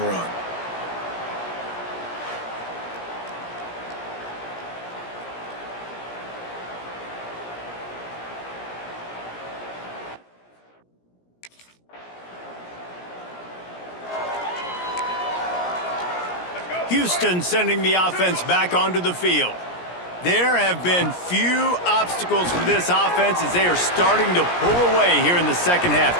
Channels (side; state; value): right; late; 17 ms